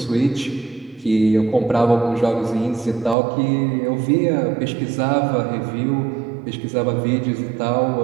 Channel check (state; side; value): drops out; left; at 3.2 s